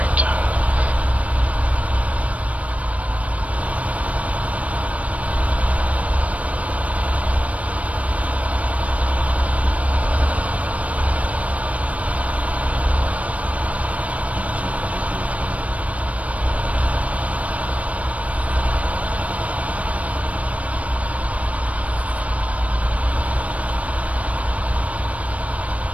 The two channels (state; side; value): late; left; 0.066 ms